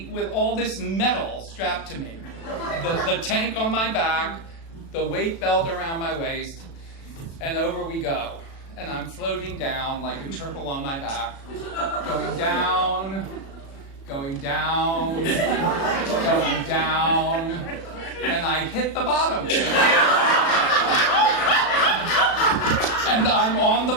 with all this metal strapped to me. The tank on my back, the weight belt around my waist, and over we go. And I'm floating down like a turtle on my back, going down, going down, going down, and I hit the bottom. And I'm on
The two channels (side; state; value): right; late; 36 ms